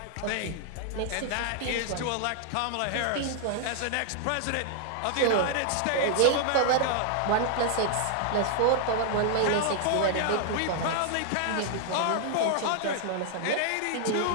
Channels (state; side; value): different; both; correlation 0.00